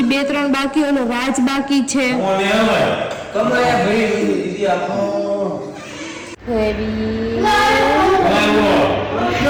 2-3 બાકી, ઓલો રાજ બાકી છે.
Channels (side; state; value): both; identical; correlation 1.00